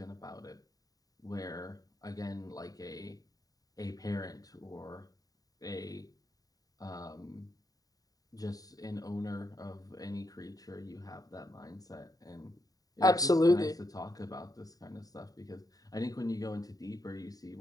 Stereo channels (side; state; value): right; late; 0.18 ms